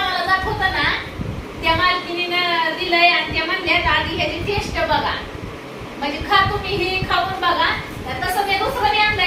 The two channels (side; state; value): both; identical; correlation 1.00